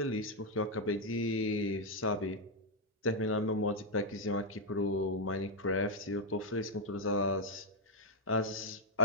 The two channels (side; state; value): both; normal; correlation 0.00